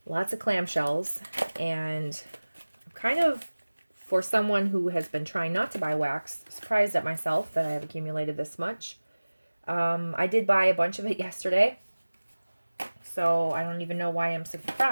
lots of clamshells and I'm kind of, for someone who has been trying not to buy wax, surprised at myself that I have accumulated this much. I did buy a bunch of it yesterday, so I don't even know why I'm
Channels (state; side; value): inverted; both; correlation -1.00